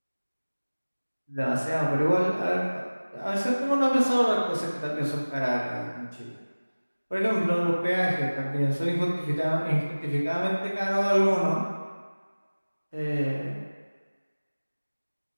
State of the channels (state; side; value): inverted; both; correlation -1.00